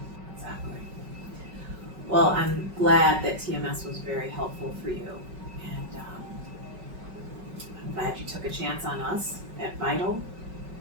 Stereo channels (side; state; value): left; late; 5.3 ms